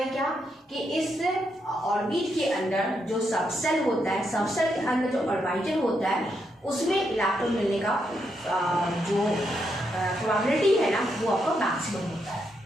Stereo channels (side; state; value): both; normal; correlation 0.80